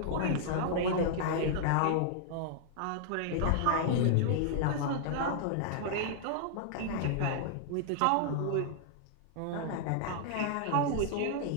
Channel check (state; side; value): different; both; correlation -0.01